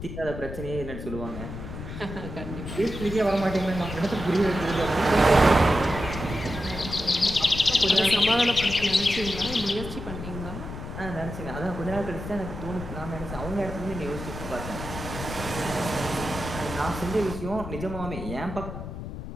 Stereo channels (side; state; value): left; noise; rumble, 9 dB below the sound